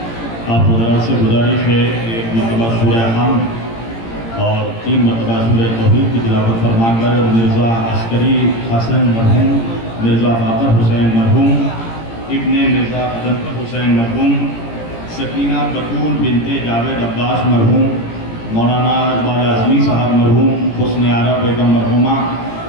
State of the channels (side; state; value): right; late; 18 ms